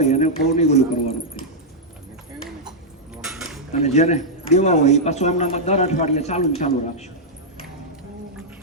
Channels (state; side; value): normal; both; correlation -0.07